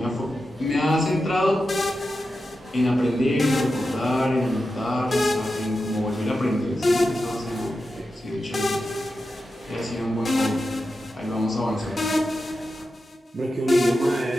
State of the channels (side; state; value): both; normal; correlation 0.90